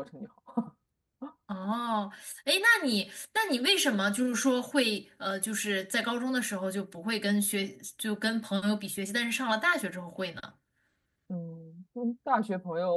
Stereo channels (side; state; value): both; identical; correlation 1.00